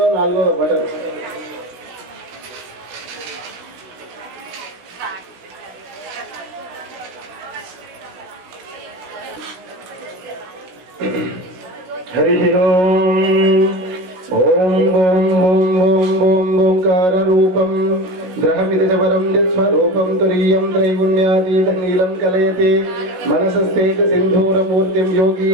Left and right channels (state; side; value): late; left; 16 ms